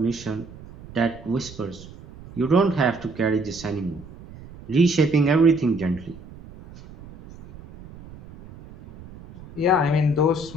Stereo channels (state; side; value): noise; right; rumble, 18 dB below the sound